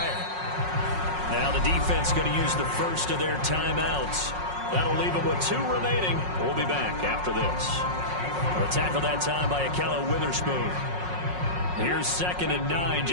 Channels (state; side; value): late; left; 5.5 ms